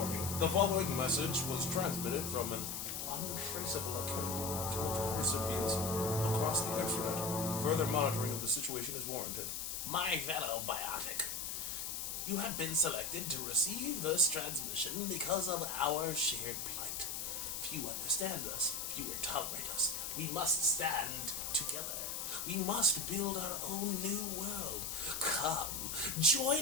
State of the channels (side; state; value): left; noise; hiss, 4 dB below the sound